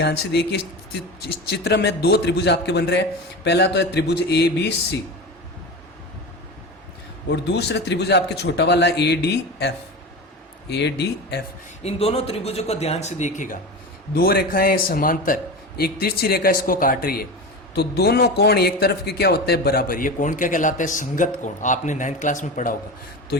से देखिए, इस चित्र में 2 त्रिभुज आपके बन रहे हैं। पहला तो है त्रिभुज ABC और दूसरा त्रिभुज आपके छोटा वाला ADF। इन दोनों त्रिभुजों को ध्यान से देखिएगा, 2 रेखाएं समांतर, एक तिरछी रेखा इसको काट रही है। तो दोनों कोण एक तरफ के क्या होते हैं, बराबर। ये कोण क्या कहलाता है, संगत कोण, आपने 9th क्लास में पढ़ा होगा। तो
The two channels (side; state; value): both; normal; correlation 0.26